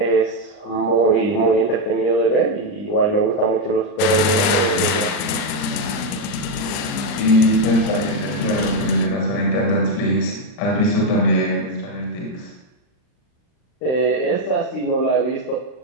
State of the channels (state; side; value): late; right; 40 ms